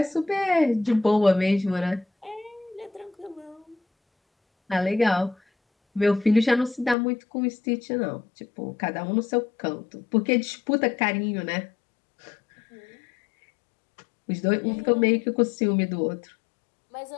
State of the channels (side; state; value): right; drops out; at 7.0 s